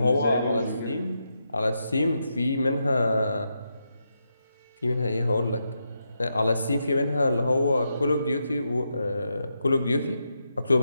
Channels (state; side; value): inverted; both; correlation -0.84